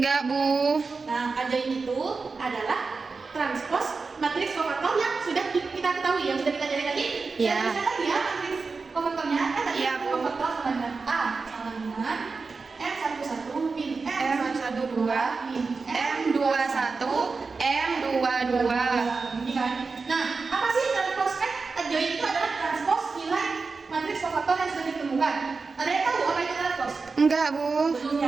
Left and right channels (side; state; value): left; quieter; 4.4 dB